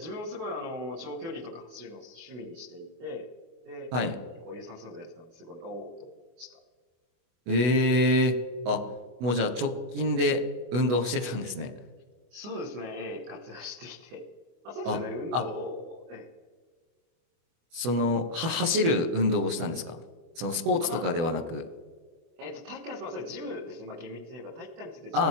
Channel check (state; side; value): late; left; 25 ms